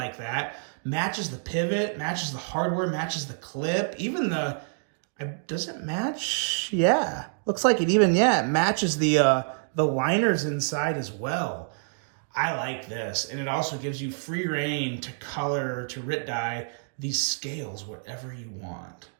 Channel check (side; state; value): left; silent; digital silence